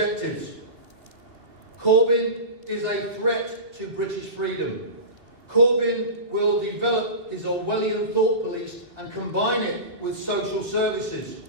Corbyn is a threat to British freedom. Corbyn will develop his Orwellian thought police and combine it with social services.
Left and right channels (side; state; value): left; late; 2.7 ms